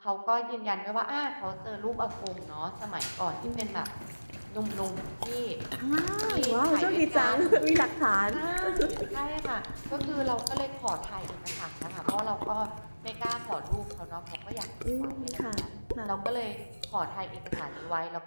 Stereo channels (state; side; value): inverted; both; correlation -1.00